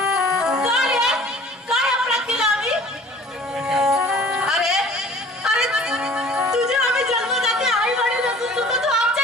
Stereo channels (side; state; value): both; normal; correlation 0.49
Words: काय काय अपराध केला आम्ही अरे तुझे आम्ही जन्मदाते आई वडील असून सुद्धा तू